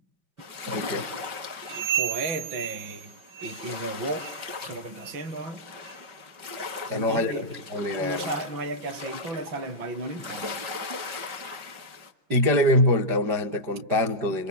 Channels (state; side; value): late; left; 5.3 ms